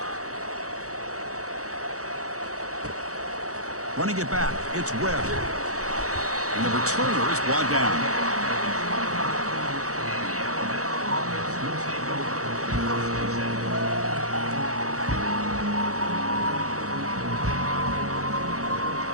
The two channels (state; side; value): late; left; 0.65 ms